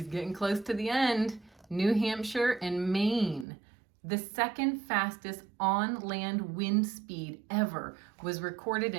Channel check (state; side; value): drops out; left; at 3.5 s